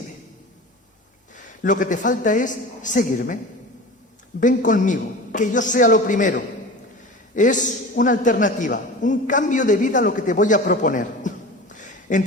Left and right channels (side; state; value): both; normal; correlation 0.34